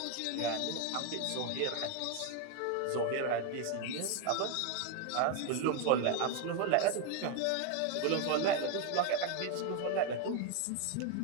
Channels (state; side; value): different; both; correlation 0.01